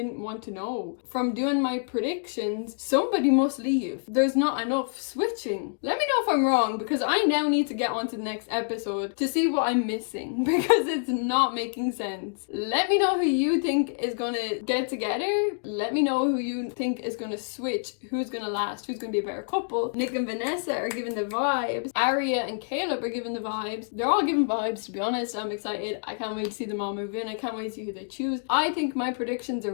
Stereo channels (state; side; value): silent; right; digital silence